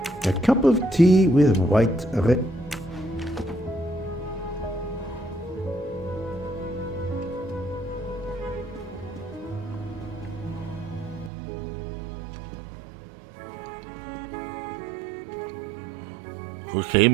A cup of tea with white red.佢企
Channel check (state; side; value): drops out; left; at 11.3 s